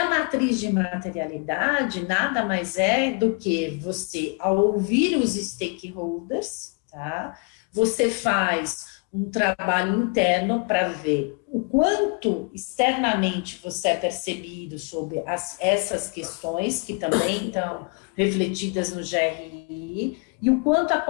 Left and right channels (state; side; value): quieter; right; 35.2 dB